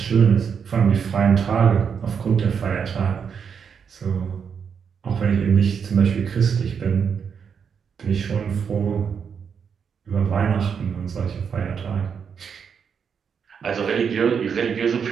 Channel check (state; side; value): quieter; left; 6.8 dB